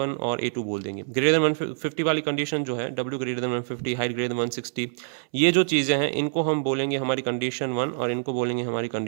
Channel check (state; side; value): silent; left; 61 dB below the other